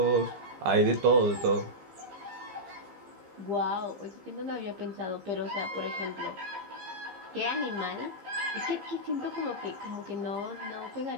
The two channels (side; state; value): left; late; 15 ms